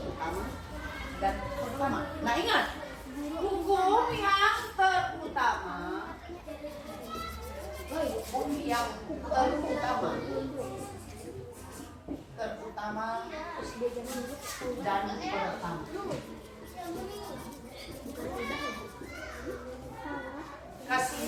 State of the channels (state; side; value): identical; both; correlation 1.00